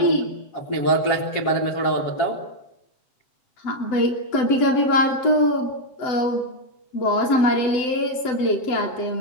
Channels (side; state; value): right; late; 7.9 ms